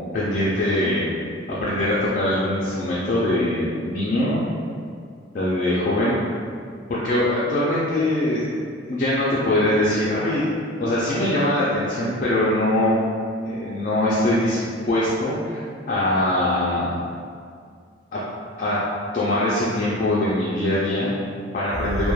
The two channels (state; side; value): normal; both; correlation 0.35